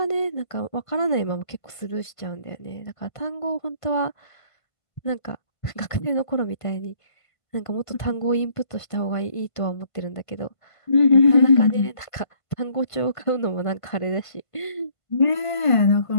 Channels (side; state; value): right; late; 1.5 ms